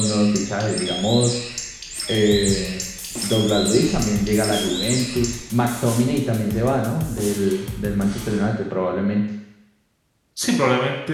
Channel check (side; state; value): both; identical; correlation 1.00